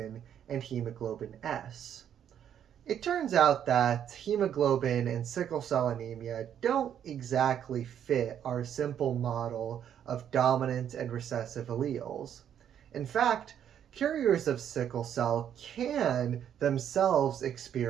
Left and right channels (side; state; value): left; quieter; 9.4 dB